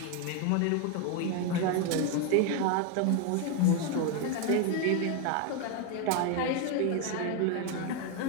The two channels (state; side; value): different; both; correlation 0.01